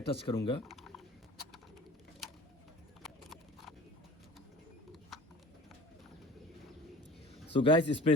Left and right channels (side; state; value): both; normal; correlation 0.42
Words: करूंगा। सो गाइस इस पे